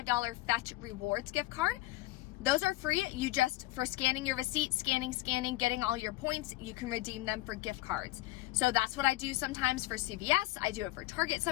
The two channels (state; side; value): quieter; right; 17.8 dB